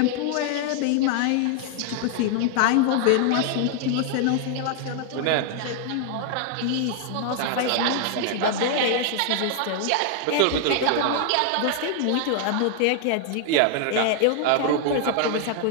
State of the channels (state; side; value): different; both; correlation 0.00